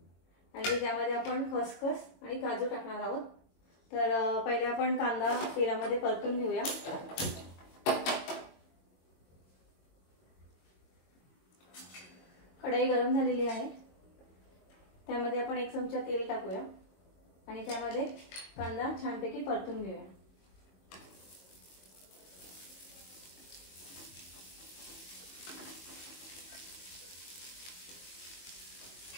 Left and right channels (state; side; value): late; right; 22 ms